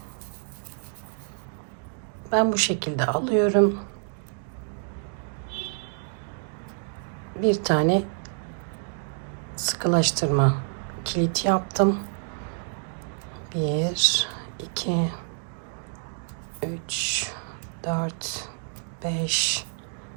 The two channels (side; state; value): left; silent; digital silence